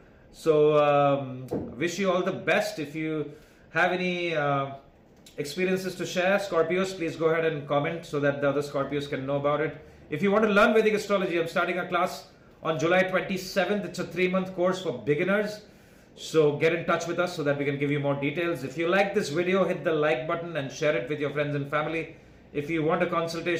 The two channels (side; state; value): both; identical; correlation 1.00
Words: So wish you all the best. If you have any experiences to share, Scorpios, please go ahead and comment so that the other Scorpios can know about it. If you want to learn Vedic astrology, I'm starting a class on July 27th. It's a 3-month course for beginners. So get in touch with us so that we can give you more details. If you like this video, hit the like button and share it with your friends and family. If you want a